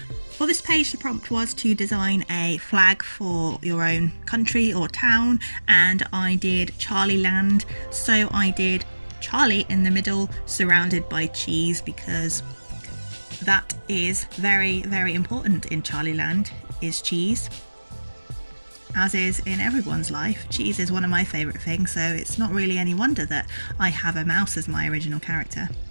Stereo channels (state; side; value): inverted; both; correlation -1.00